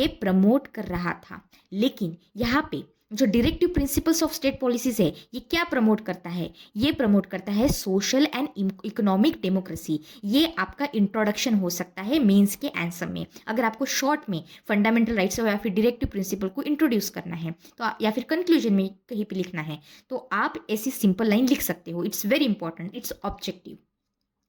प्रमोट कर रहा था। लेकिन यहाँ पे जो directive principles of state policies है ये क्या प्रमोट करता है? ये प्रमोट करता है सोशल एंड इकोनॉमिक डेमोक्रेसी। ये आपका इंट्रोडक्शन हो सकता है मेंस के आंसर में। अगर आपको शॉर्ट में फंडामेंटल राइट्स या फिर डायरेक्टिव प्रिंसिपल को इंट्रोड्यूस करना है तो या फिर कंक्लूजन में कहीं पे लिखना है तो आप ऐसी सिंपल लाइन लिख सकते हो। It's very important, it's objective.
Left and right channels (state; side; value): identical; both; correlation 1.00